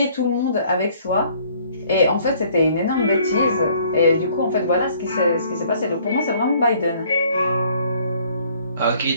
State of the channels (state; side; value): inverted; both; correlation -0.60